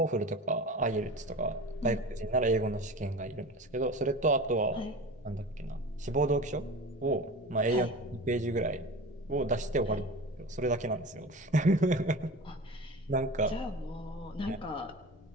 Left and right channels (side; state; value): both; normal; correlation 0.33